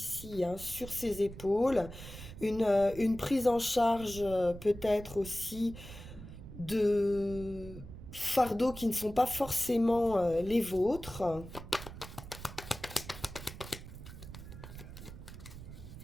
sur ses épaules, une prise en charge peut-être aussi de fardeaux qui ne sont pas forcément les vôtres.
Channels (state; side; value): noise; right; rumble, 13 dB below the sound